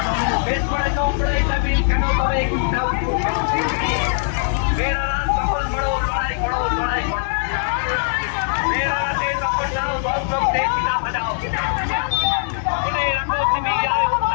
বেশ করে চৌপড়ে জমিন কেন তবে মেয়েরা সকল বড় লড়াই করো লড়াই করো মেয়েরা তখন যাও দর্শকদের পিতা বাজাও মনে রাখো তুমি যাও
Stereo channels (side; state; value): right; silent; digital silence